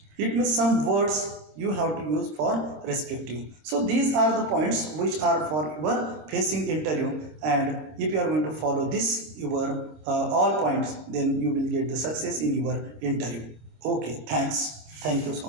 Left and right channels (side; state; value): left; late; 26 ms